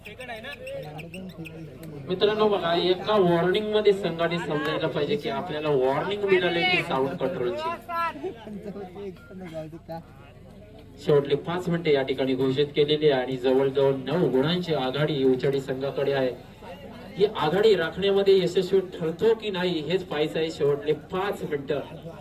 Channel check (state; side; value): identical; both; correlation 1.00